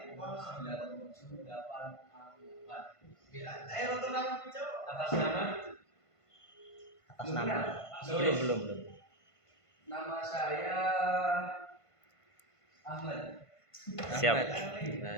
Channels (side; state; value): right; late; 1.5 ms